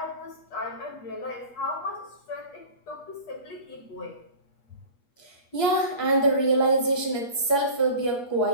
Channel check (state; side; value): late; right; 8.3 ms